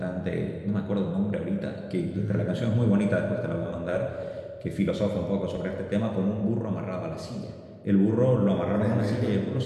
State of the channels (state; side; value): identical; both; correlation 1.00